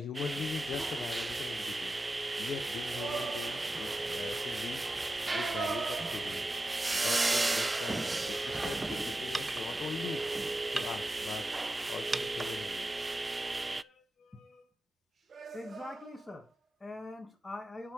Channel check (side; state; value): both; normal; correlation 0.92